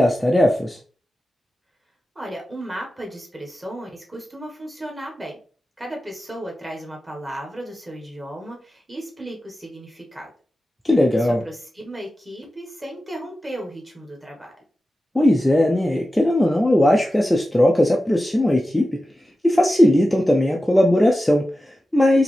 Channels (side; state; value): both; normal; correlation 0.93